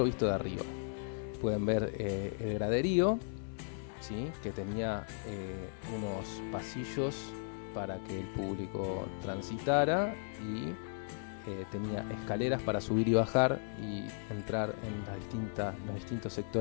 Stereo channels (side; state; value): right; silent; digital silence